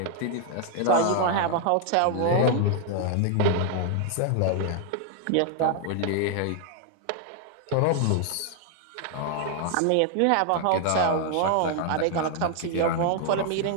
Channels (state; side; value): different; both; correlation 0.00